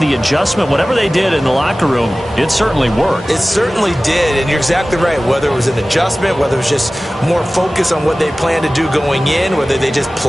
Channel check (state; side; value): normal; both; correlation 0.97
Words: adjustment, whatever they did in the locker room, it certainly worked. It certainly did, and you're exactly right. Whether it was an adjustment, whether it was just more focus on what they planned to do going in, whether they just